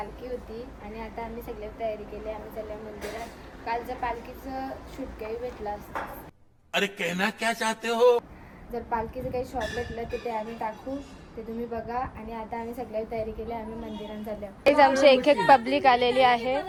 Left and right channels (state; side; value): identical; both; correlation 1.00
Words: होती आणि आता आम्ही सगळे तयारी केली. आम्ही चाललो मंदिरात. कालच्या पालखीचं शूट काही भेटलं असतं. अरे कहना क्या चाहते हो? जर पालखीचं काही शॉट भेटलं तर ते आम्ही टाकू, ते तुम्ही बघा. आणि आता आम्ही सगळ्या तयारी केली. आम्ही मंदिरात चाललो. आमची एक पब्लिक आलेली आहे